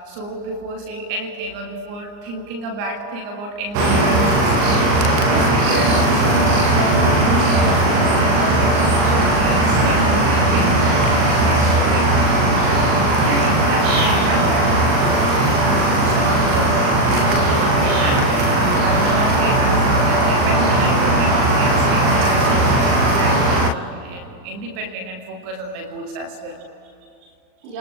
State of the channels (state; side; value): late; left; 39 ms